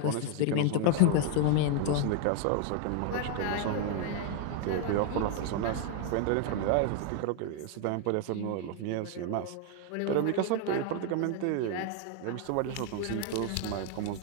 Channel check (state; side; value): different; both; correlation 0.00